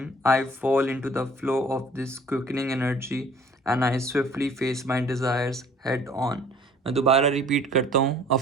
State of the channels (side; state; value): both; normal; correlation 0.53